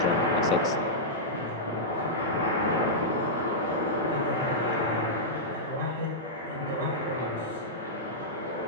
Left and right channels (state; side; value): normal; both; correlation -0.11